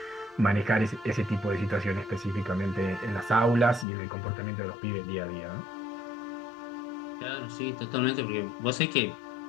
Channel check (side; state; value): right; drops out; at 3.9 s